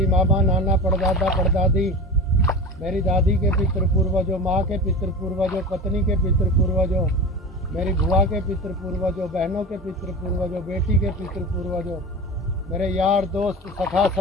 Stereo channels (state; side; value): normal; both; correlation 0.30